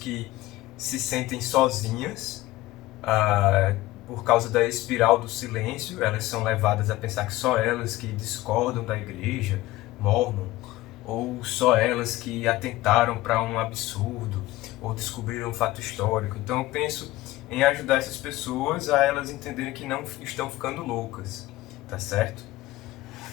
se sentem sozinhas por causa da espiral do silêncio. Elas são levadas a pensar que só elas que discordam da igreja mormon, ou só elas que atentaram para um absurdo, ou descobriram um fato histórico. Então eu penso em ajudar essas pessoas a elas entenderem que não estão ficando loucas, tá certo?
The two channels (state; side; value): quieter; right; 17.5 dB